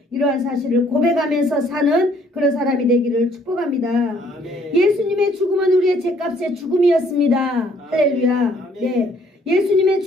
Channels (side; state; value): both; normal; correlation 0.63